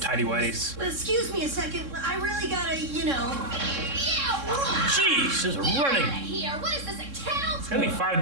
tidy whities. Excuse me a second. I really gotta, you know. Yeah, Jeez, just running. here. What is this, a kennel? It's gonna be 5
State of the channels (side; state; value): left; late; 3.6 ms